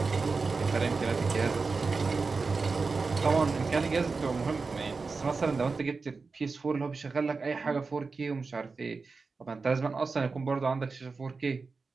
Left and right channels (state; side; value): quieter; left; 4.3 dB